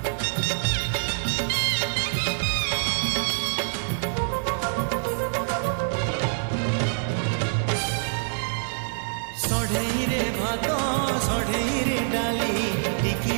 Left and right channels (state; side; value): silent; left; 59 dB below the other